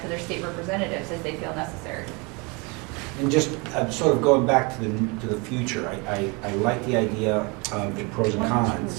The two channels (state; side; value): quieter; left; 29.1 dB